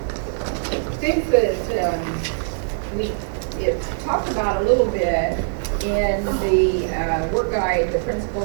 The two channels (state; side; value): silent; left; digital silence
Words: things that we talked about a little bit in the work guide. The